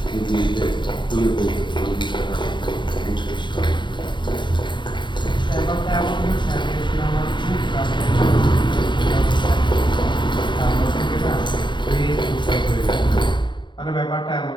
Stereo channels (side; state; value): right; late; 0.23 ms